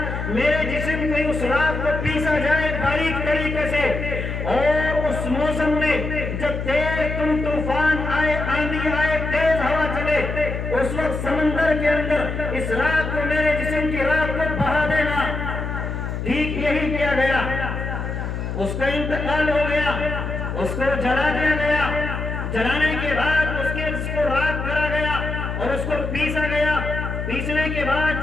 میرے جسم میں اس راہ کو پیسا جائے باریک طریقے سے، اور اس موسم میں جب تیز طوفان آئے، آندھی آئے، تیز ہوا چلے، اس وقت سمندر کے اندر اس راہ کو میرے جسم کی راہ کو بہا دینا۔ ٹھیک یہی کیا گیا، اس کا انتقال ہو گیا، اس کو جلا دیا گیا، جلانے کے بعد اس کو راکھ کرا گیا اور اس کو پیسا گیا، پیسنے کے بعد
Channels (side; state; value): left; noise; hum, 4 dB below the sound